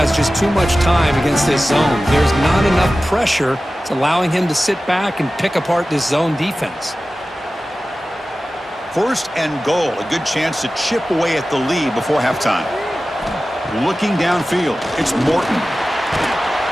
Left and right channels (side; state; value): both; normal; correlation 0.95